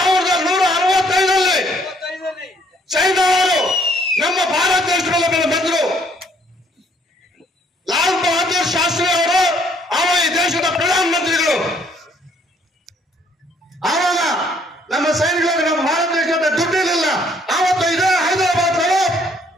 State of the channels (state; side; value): normal; both; correlation 0.65